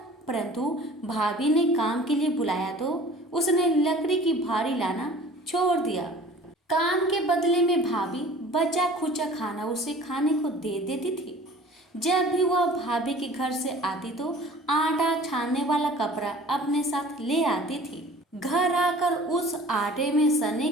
परंतु भाभी ने काम के लिए बुलाया तो उसने लकड़ी की भारी लाना छोड़ दिया। काम के बदले में भाभी बचा खुचा खाना उसे खाने को दे देती थी। जब भी वह भाभी के घर से आती तो आटा छानने वाला कपड़ा अपने साथ ले आती थी। घर आकर उस आटे में सने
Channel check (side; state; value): both; normal; correlation 0.46